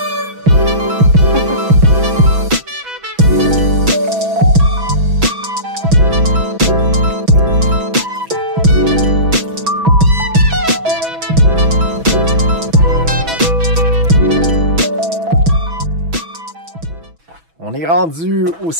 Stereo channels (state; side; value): late; left; 6.1 ms